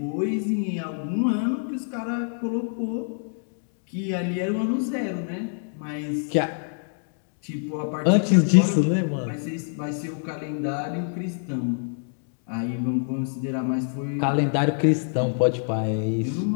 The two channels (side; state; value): right; silent; digital silence